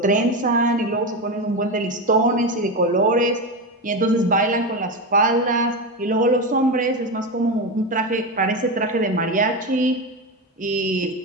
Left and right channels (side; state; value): both; normal; correlation 0.17